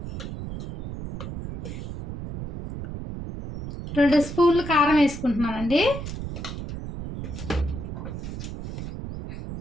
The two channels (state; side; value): noise; right; rumble, 7 dB below the sound